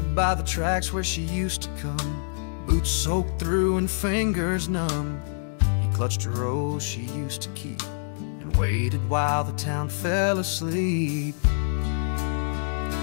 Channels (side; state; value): right; silent; digital silence